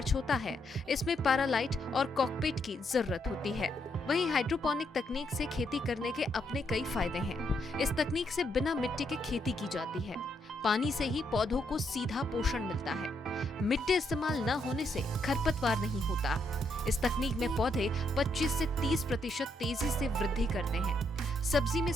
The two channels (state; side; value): normal; both; correlation 0.77